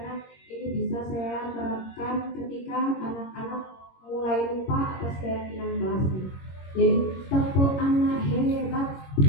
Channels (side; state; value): right; late; 22 ms